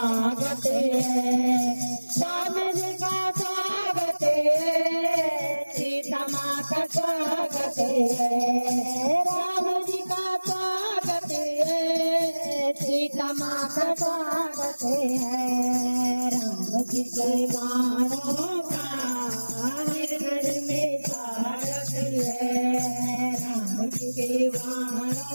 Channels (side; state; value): both; inverted; correlation -1.00